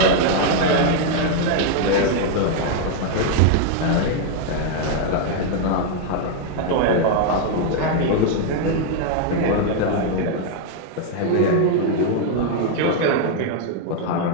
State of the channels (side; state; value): both; different; correlation 0.00